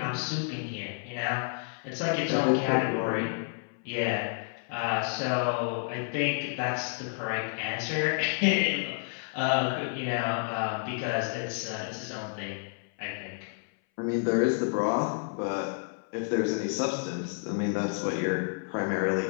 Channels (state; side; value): silent; right; 58 dB below the other